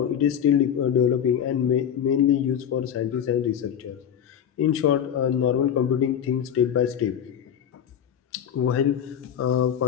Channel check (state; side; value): quieter; right; 9.0 dB